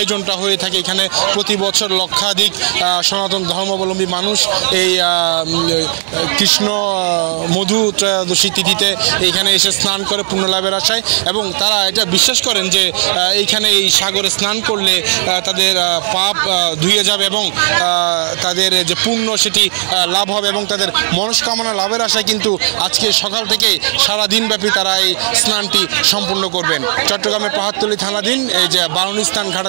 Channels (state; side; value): silent; left; digital silence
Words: হয়ে থাকে। এখানে প্রতি বছর লক্ষাধিক সনাতন ধর্মাবলম্বী মানুষ এই কৃষ্ণ মধু ত্রয়োদশী তিথিতে এইখানে এসে স্নান করে পুণ্য লাভের আশায়, এবং তারা এটা বিশ্বাস করেন যে এইখানে এই সাগরে স্নান করলে তাদের পাপ ধুয়ে যাবে এবং তাদের যে পুণ্য সেটি লাভ হবে এবং তাদের মনস্কামনা লাভের আশায় কিন্তু আজকে সকাল থেকে সারাদিনব্যাপী তারা এই স্নানটি সম্পূর্ণ করবেন। চট্টগ্রামের পাহাড়তলী থানাধীন এই যে বারুণী স্নান